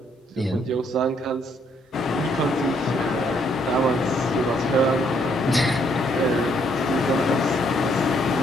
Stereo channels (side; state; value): both; normal; correlation 0.70